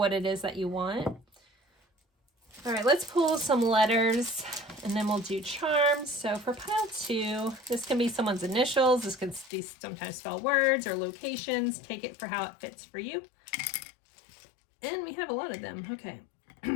it is that you want. All right, let's pull some letters and then we'll do charms. So for pile 2, this can be someone's initials. This could be sometimes spell words or locations. Take it for how it fits for you. And we have a lot of them. Okay.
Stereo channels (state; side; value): drops out; right; at 9.5 s